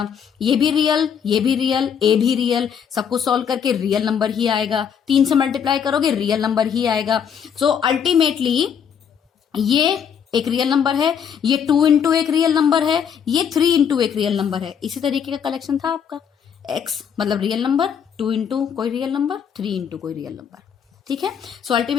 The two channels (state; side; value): quieter; right; 7.7 dB